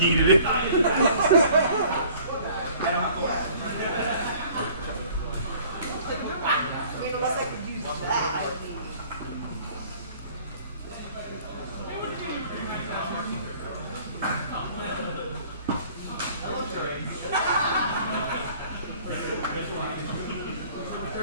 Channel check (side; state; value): both; inverted; correlation -0.52